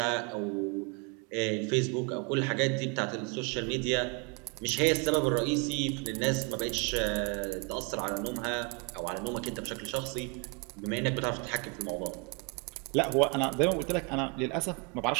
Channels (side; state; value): left; quieter; 32.6 dB